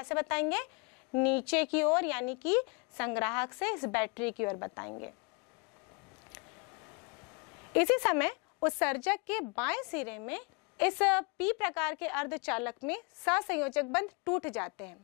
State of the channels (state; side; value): quieter; right; 31.8 dB